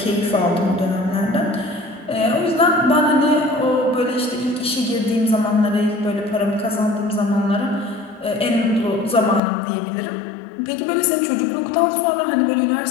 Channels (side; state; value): right; drops out; at 9.4 s